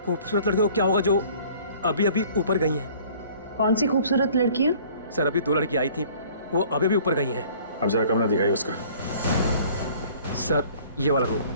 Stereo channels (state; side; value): inverted; both; correlation -0.52